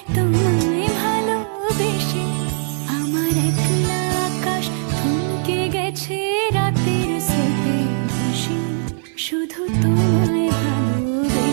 তোমায় ভালোবেসে। আমার একলা আকাশ থমকে গেছে রাতের স্রোতে ভেসে, শুধু তোমায়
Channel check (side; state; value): left; silent; 58 dB below the other